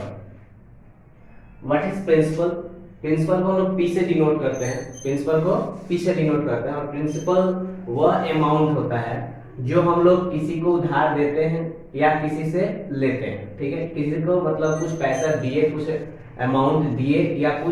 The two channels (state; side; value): identical; both; correlation 1.00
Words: What is principal? Principal को हम लोग P से denote करते हैं, principal को P से denote करते हैं। और प्रिंसिपल वह अमाउंट होता है जो हम लोग किसी को उधार देते हैं या किसी से लेते हैं। ठीक है, किसी को मतलब कुछ पैसा दिए, कुछ अमाउंट दिए या